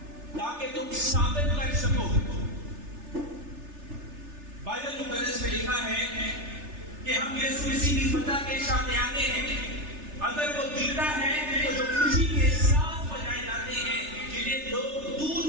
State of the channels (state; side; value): late; left; 3.3 ms